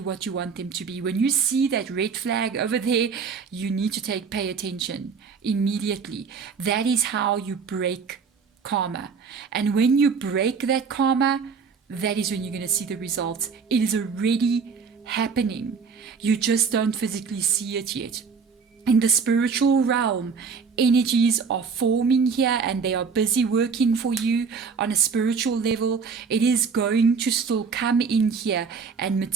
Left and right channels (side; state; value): left; quieter; 5.6 dB